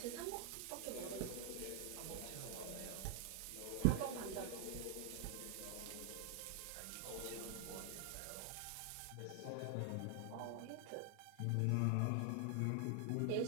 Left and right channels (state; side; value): different; both; correlation 0.00